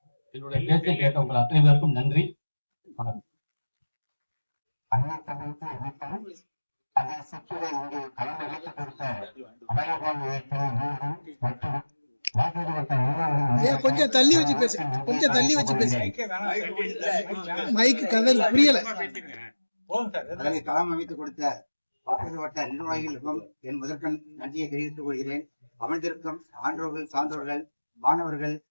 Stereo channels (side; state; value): both; inverted; correlation -1.00